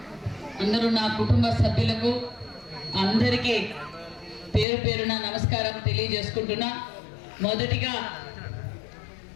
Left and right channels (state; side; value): drops out; right; at 4.7 s